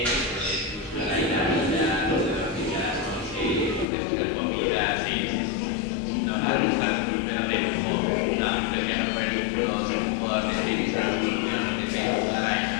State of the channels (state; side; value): drops out; right; at 3.9 s